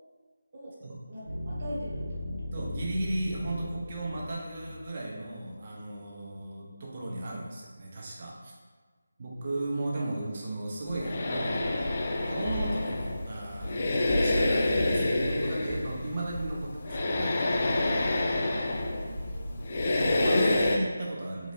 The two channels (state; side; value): inverted; both; correlation -0.91